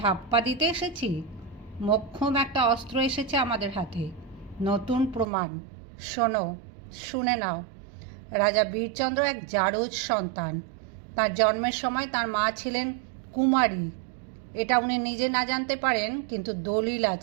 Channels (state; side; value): drops out; left; at 5.2 s